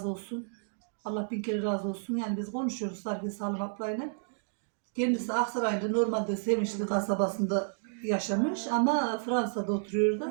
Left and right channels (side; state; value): left; silent; digital silence